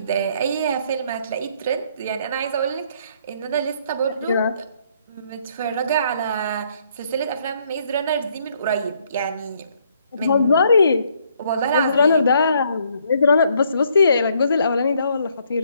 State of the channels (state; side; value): inverted; both; correlation -0.68